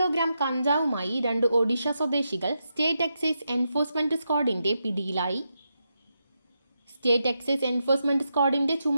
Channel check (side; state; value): both; inverted; correlation -0.85